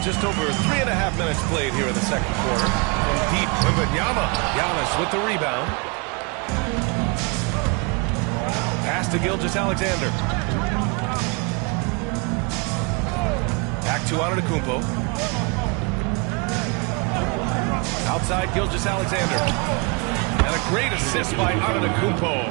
just over 3.5 minutes played here in the second quarter. From deep, Wembanyama. Giannis with the rebound. Pass to Gilgeous-Alexander. Back to Antetokounmpo. Outside Gilgeous-Alexander. And a great assist by Antetokounmpo.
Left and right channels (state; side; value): quieter; left; 31.1 dB